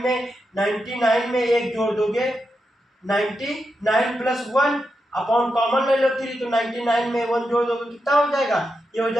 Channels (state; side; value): normal; both; correlation 0.87